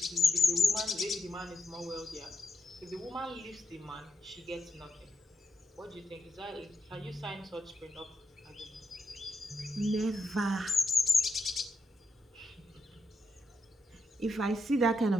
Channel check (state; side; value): normal; both; correlation 0.83